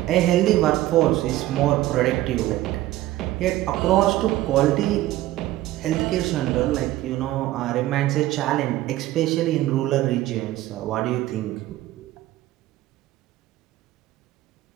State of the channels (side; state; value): left; quieter; 15.6 dB